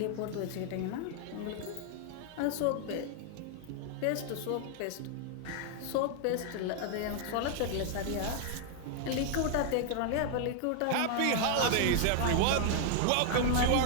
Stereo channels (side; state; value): both; different; correlation 0.00